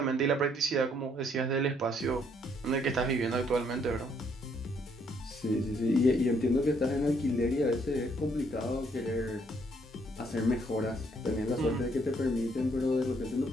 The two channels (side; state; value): both; normal; correlation 0.68